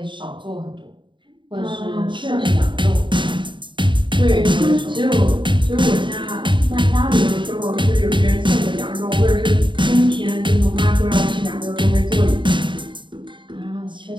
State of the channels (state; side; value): late; left; 0.23 ms